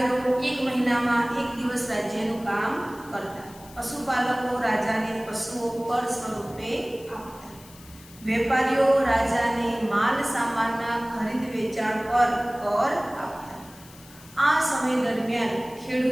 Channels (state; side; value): noise; left; hiss, 21 dB below the sound